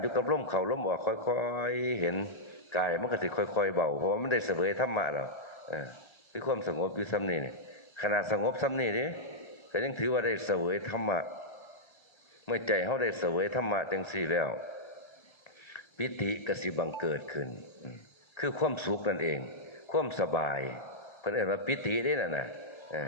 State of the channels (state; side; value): late; right; 1.3 ms